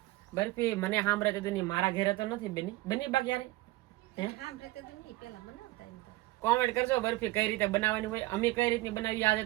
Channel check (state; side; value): quieter; left; 19.2 dB